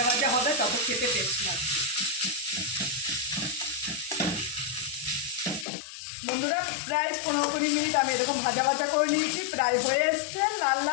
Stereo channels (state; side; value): drops out; right; at 5.7 s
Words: ভাজা হবে তত খেতে টেস্ট লাগবে। বন্ধুরা, প্রায় 15-20 মিনিট আমি এরকম ভাজা ভাজা করে নিয়েছি, প্রায় হয়ে এসছে লাল